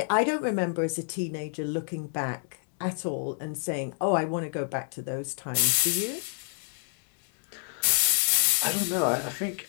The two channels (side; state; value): right; silent; digital silence